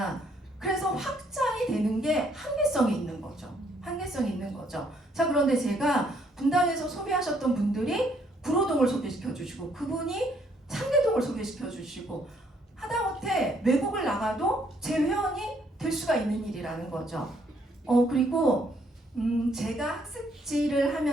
그래서 확장이 되는 게 한계성이 있는 거죠. 한계성이 있는 거죠. 자, 그런데 제가 분당에서 소개하셨던 분들이 구로동을 소개시켜 주시고, 그분이 상계동을 소개시켜 주시고, 하다못해 외국을 나가도 제 회원이 될 수가 있는 일이라는 거죠. 그리고 제가 학습지를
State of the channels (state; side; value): normal; both; correlation 0.68